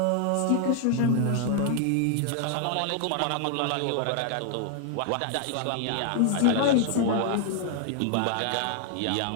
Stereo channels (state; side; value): different; both; correlation 0.00